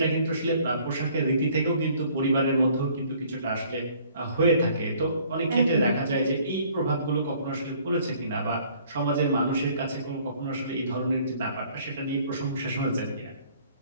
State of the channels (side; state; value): both; inverted; correlation -0.58